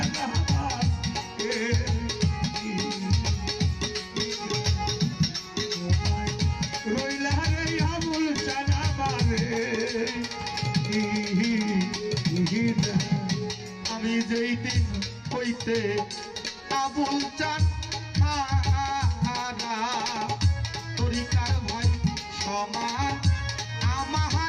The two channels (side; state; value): both; identical; correlation 1.00